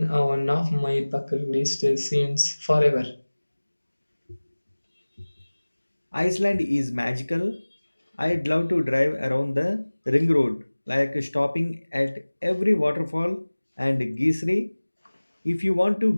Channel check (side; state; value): both; inverted; correlation -1.00